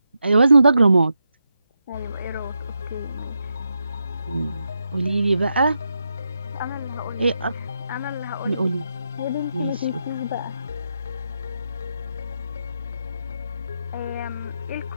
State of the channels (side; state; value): both; inverted; correlation -0.85